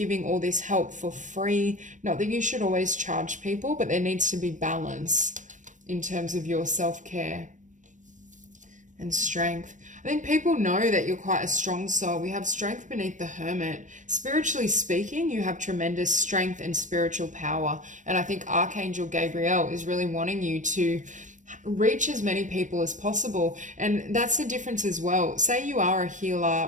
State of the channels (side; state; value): left; late; 0.37 ms